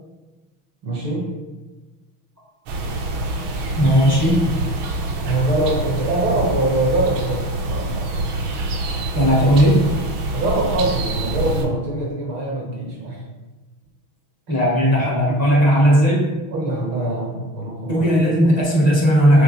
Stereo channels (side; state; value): left; late; 6.2 ms